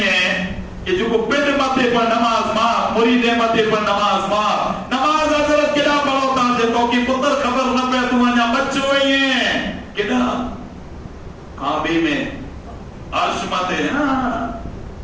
ہیں کہ جو کو پنڈ ماتے پر نماز ماں مرید ماتے پر نماز ماں نماز حضرت کدا پڑھو تاجے تو کہ پتر خبر نہ پہ تو آنیا بچو ہوئی ہیں کدا کعبے میں عرش متے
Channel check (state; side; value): identical; both; correlation 1.00